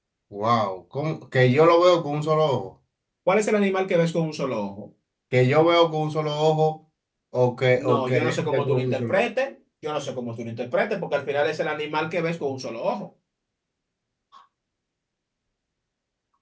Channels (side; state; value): both; identical; correlation 1.00